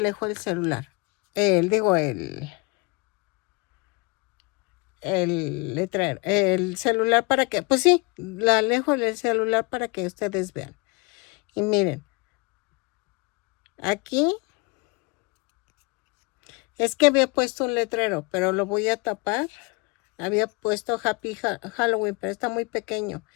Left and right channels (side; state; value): right; quieter; 28.0 dB